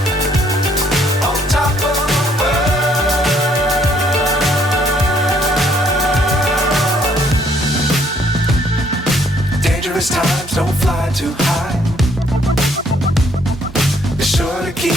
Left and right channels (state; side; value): normal; both; correlation 0.66